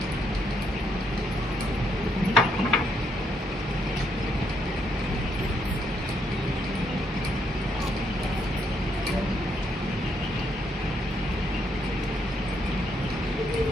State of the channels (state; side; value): normal; both; correlation 0.75